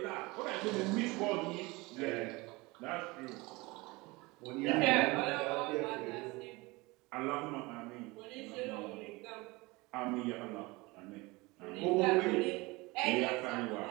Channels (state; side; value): quieter; left; 23.6 dB